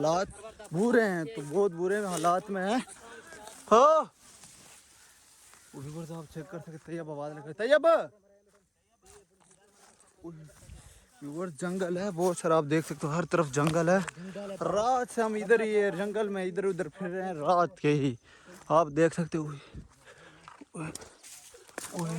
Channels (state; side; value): identical; both; correlation 1.00